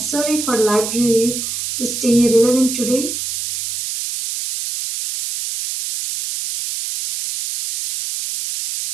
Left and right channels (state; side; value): noise; right; hiss, 5 dB below the sound